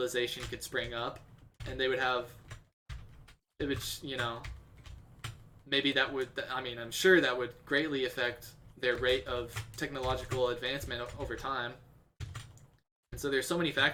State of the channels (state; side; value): identical; both; correlation 1.00